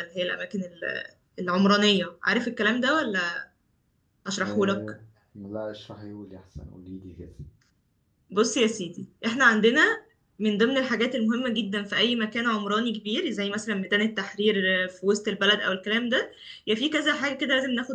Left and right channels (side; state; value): both; identical; correlation 1.00